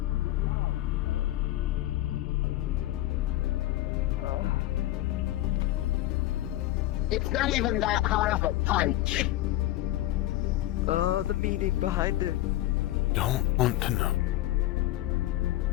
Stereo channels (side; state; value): right; quieter; 15.5 dB